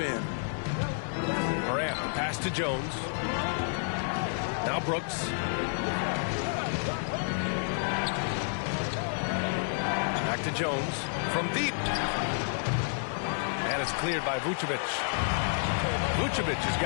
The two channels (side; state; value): right; silent; digital silence